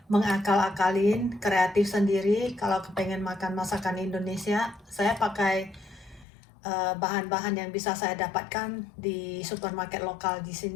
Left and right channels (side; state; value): right; drops out; at 6.2 s